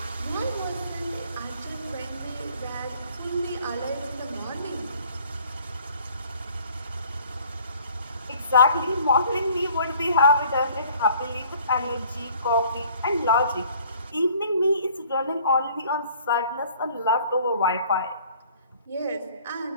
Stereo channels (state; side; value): inverted; both; correlation -0.55